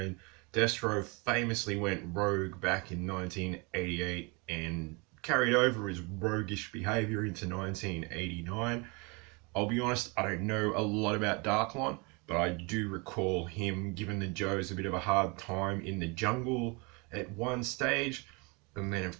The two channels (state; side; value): quieter; left; 29.5 dB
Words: Destro famously went rogue back in 1988 and carried over his roguish behavior into 1989. I'll be honest, I don't know a lot about Darklon, but I do recall him giving the Joes a bit of a hard time in the jungle at one stage. And then,